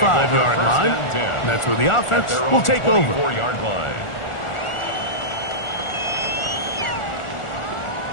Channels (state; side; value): late; right; 1.4 ms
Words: line. That's where the offense will take over. 24-yard line.